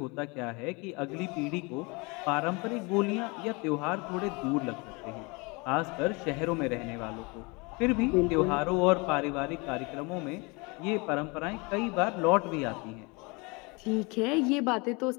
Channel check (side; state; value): right; quieter; 28.1 dB